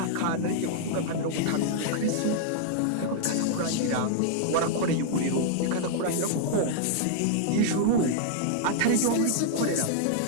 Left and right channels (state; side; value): different; both; correlation -0.01